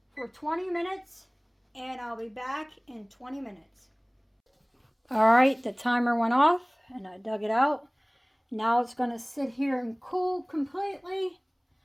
for 20 minutes, and I'll be back in 20 minutes. Alright, the timer went off, and I dug it out. Now it's going to sit here and cool completely.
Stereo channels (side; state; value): both; identical; correlation 1.00